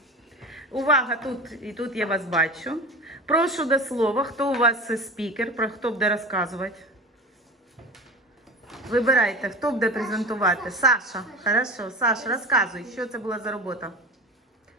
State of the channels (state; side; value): normal; both; correlation 0.32